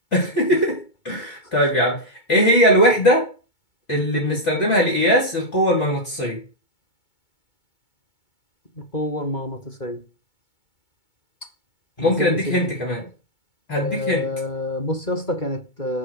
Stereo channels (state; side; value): late; right; 2.2 ms